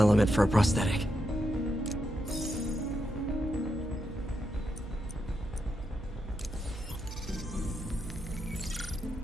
for a prosthetic.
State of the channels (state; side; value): noise; right; hum, 11 dB below the sound